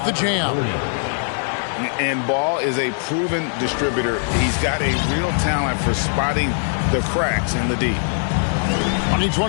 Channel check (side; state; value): right; silent; 64 dB below the other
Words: the jam. And Ball is a proven distributor. He's got a real talent for spotting the cracks in the D.